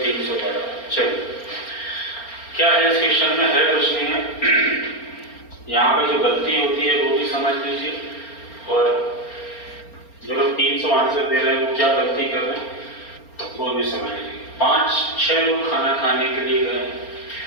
चलिए, क्या है इस क्वेश्चन में? है कुछ नहीं है। यहाँ पे जो गलती होती है वो भी समझ लीजिए, और जो लोग 300 आंसर दे रहे हैं वो क्या गलती कर रहे हैं वो भी समझ लीजिए। 5-6 लोग खाना खाने के लिए गए,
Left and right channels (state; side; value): late; right; 4.3 ms